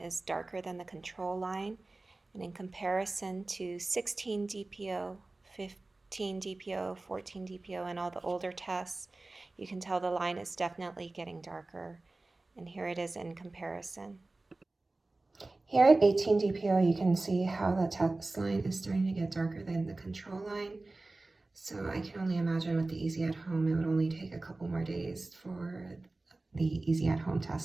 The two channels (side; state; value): left; quieter; 3.1 dB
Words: darker than the control line. And in comparison to 16 DPO, 15 DPO, 14 DPO, and all the older tests, you can tell the line is definitely getting darker, and here it is in comparison. Here at 18 DPO, you can see how the test line is starting to get darker than the control line. So I can only imagine with the Easy at Home, it would only take a couple more days for the Easy at Home